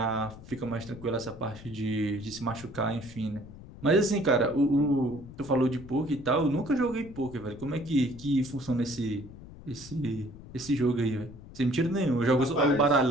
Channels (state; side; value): noise; left; rumble, 16 dB below the sound